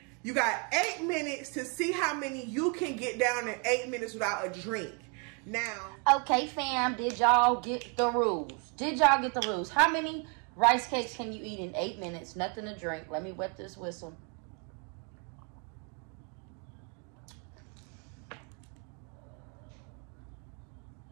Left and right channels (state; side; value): quieter; left; 35.1 dB